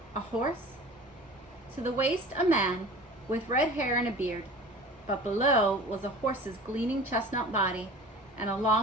A horse? To the waist, a man with red hair and a beard. But below was a horse's gleaming chestnut body and a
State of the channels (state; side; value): normal; both; correlation 0.40